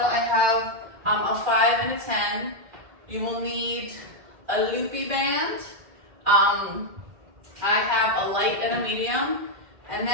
I have a 5 and a 10. You will need a loopy band. I have a light and a medium, and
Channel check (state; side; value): late; left; 2.8 ms